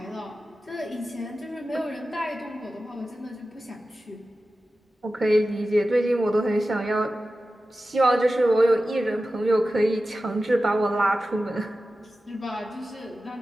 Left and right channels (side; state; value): both; normal; correlation 0.94